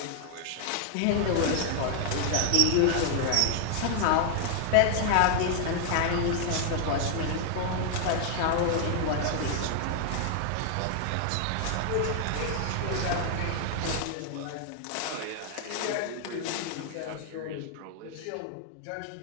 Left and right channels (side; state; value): both; different; correlation 0.00